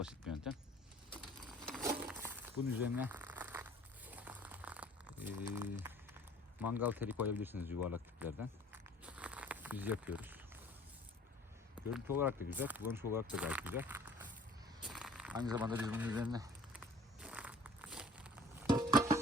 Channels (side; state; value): both; normal; correlation 0.51